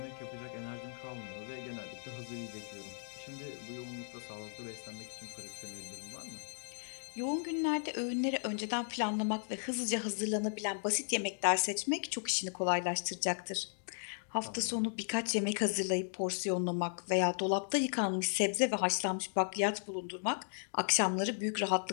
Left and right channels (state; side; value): silent; right; digital silence